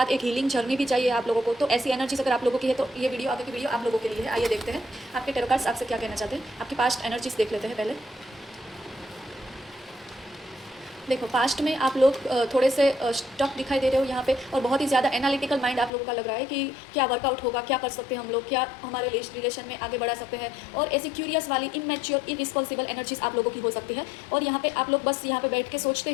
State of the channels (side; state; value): right; drops out; at 15.9 s